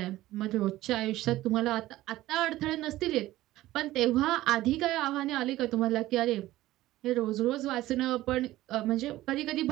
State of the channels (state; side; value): quieter; left; 16.0 dB